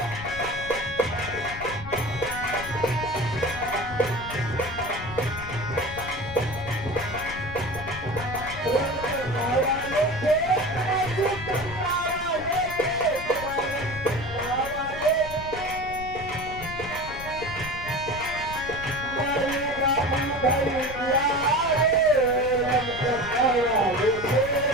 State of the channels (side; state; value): left; noise; rumble, 12 dB below the sound